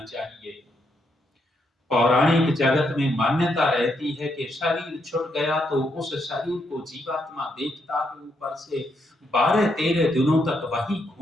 चाहिए। पौराणिक जगत में मान्यता रहती है कि शरीर छूट गया तो उस शरीर को जीवात्मा देखता है ऊपर से, 12-13 दिनों तक वही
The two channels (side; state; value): both; normal; correlation 0.78